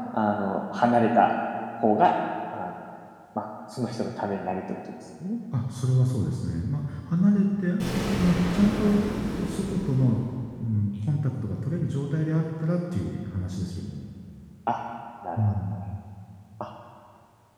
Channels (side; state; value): both; identical; correlation 1.00